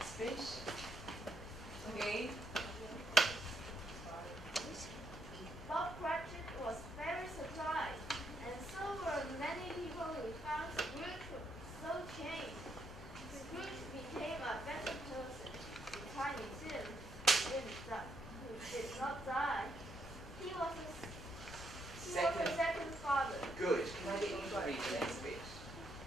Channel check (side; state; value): right; noise; rumble, 17 dB below the sound